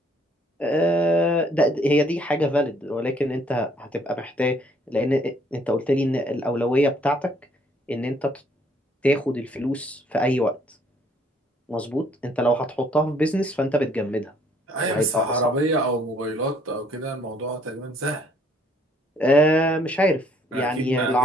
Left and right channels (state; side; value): normal; both; correlation 0.63